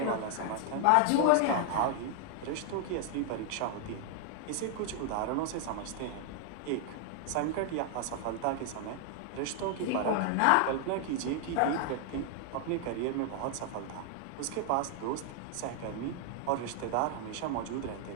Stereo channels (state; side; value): different; both; correlation 0.00